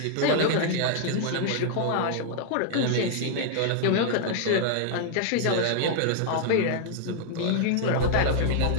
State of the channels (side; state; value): both; different; correlation -0.01